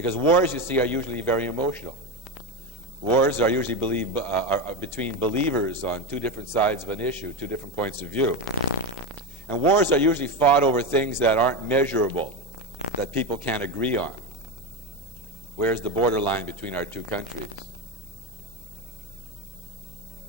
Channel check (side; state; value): both; normal; correlation 0.16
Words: wars, you see, are usually very emotional. Wars are usually are between believers on 2 different sides of an issue, 2 different points of view. And wars are usually fought over things that aren't measurable, that people can't agree on. Where's the borderline between our 2 countries?